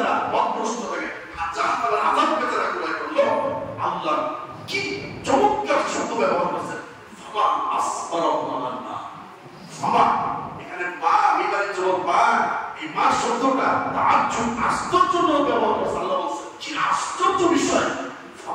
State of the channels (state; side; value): identical; both; correlation 1.00